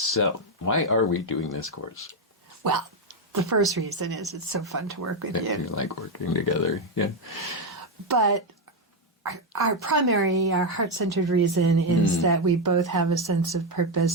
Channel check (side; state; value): both; normal; correlation 0.05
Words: why are we doing this course? Well, the first reason is it's so fun to work with You you. like working together, yeah. But our primary, our heart-centered reason is that we both have a sense of